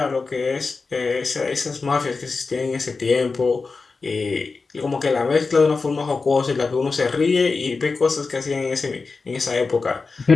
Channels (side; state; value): right; quieter; 4.3 dB